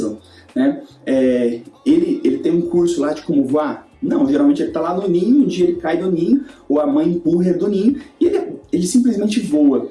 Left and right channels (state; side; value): identical; both; correlation 1.00